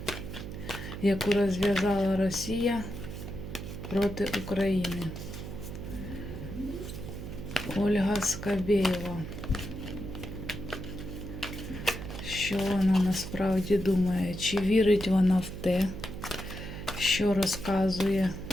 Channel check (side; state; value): right; noise; hum, 9 dB below the sound